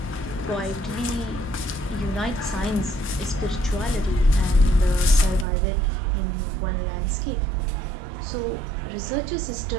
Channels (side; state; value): left; drops out; at 5.5 s